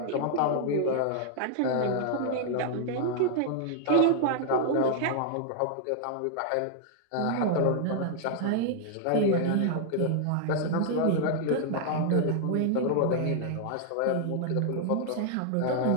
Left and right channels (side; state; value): both; different; correlation -0.01